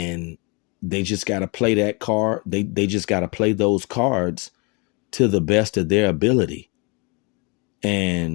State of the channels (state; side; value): quieter; right; 30.5 dB